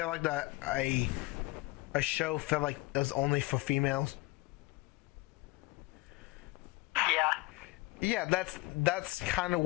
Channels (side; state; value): right; quieter; 21.6 dB